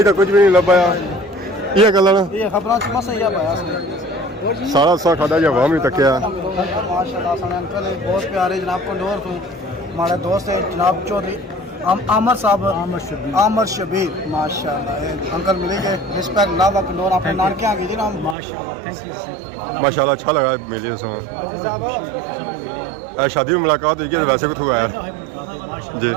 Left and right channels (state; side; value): drops out; left; at 18.4 s